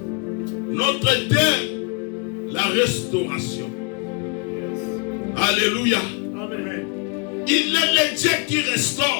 Notre thème, la restauration. Yes. Alléluia. Amen. Il est le Dieu qui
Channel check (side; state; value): right; quieter; 35.1 dB